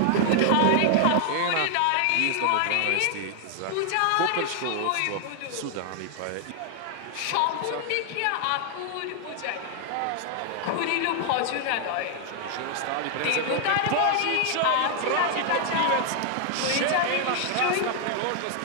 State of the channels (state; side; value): different; both; correlation 0.00